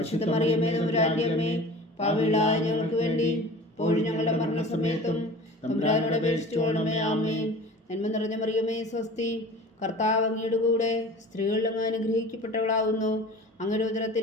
മറിയമേ തമ്പുരാന്റെ അമ്മേ, പാപികളായ ഞങ്ങൾക്ക് വേണ്ടി ഇപ്പോഴും ഞങ്ങളുടെ മരണസമയത്തും തമ്പുരാനോട് അപേക്ഷിച്ചുകൊള്ളണമേ. ആമേൻ. നന്മ നിറഞ്ഞ മറിയമേ സ്വസ്തി, കർത്താവ് അങ്ങയുടെ കൂടെ സ്ത്രീകളിൽ അങ്ങ് അനുഗ്രഹിക്കപ്പെട്ടവളാകുന്നു. അങ്ങയുടെ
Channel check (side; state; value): both; normal; correlation 0.40